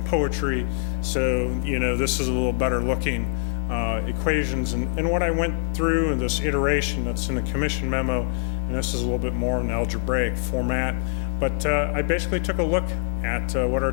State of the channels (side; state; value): right; silent; 63 dB below the other